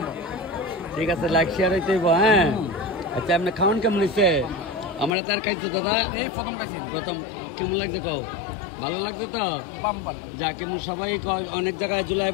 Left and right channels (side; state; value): right; drops out; at 5.1 s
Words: ঠিক আছে, লাইক শেয়ার হইতে হইব। হ্যাঁ আচ্ছা, আপনি খাওয়ান কেমন হয়েছে? আমরা তার খাইছো দাদা প্রথম, কেমন লাগছে কও? ভালো লাগছে তো? যা কেমন সবাই অনেক জায়গায়